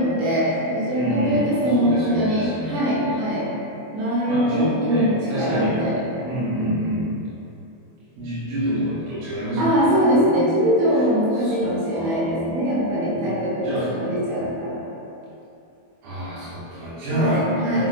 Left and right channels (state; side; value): late; left; 24 ms